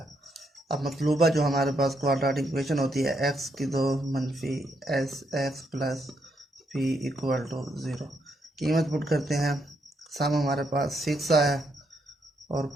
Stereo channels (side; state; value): both; normal; correlation 0.77